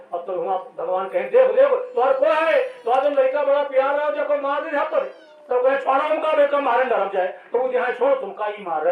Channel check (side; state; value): both; identical; correlation 1.00